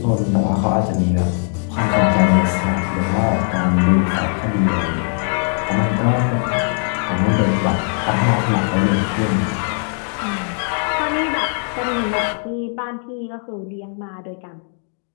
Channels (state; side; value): silent; right; 56 dB below the other